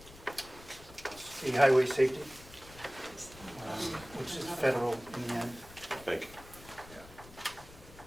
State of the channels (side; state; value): left; noise; rumble, 19 dB below the sound